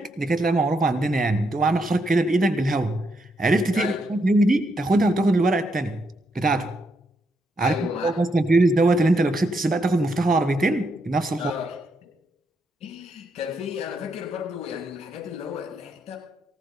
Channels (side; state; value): both; normal; correlation 0.79